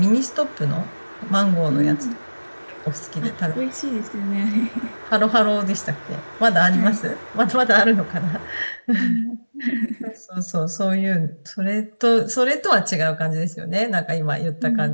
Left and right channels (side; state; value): both; inverted; correlation -1.00